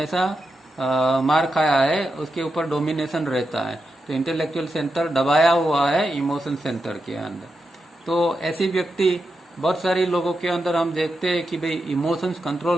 मार खाया है, उसके ऊपर डोमिनेशन रहता है। तो इंटेलेक्चुअल सेंटर दबाया हुआ है इमोशन सेंटर के अंदर। तो ऐसी व्यक्ति बहुत सारी लोगों के अंदर हम देखते हैं कि भाई इमोशंस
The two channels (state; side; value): normal; both; correlation 0.87